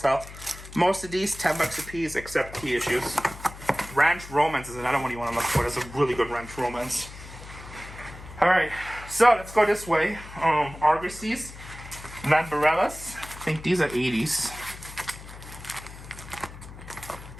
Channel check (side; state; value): left; noise; hum, 15 dB below the sound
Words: Most of these $10 a piece, except key issues. Ranch Romance is another one you want to look for. There's a really good Ranch Romance. All right, so let's go this way. Argosies, Lambarellas. I think these are 80s.